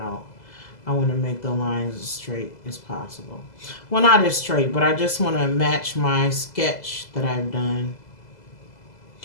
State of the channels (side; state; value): right; late; 2.0 ms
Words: want to make the lines as straight as possible. Well, not as straight, but I just want to match my sketch that I've done.